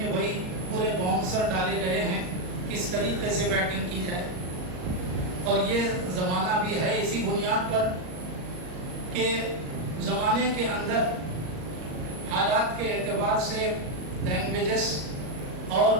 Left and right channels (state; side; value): late; left; 38 ms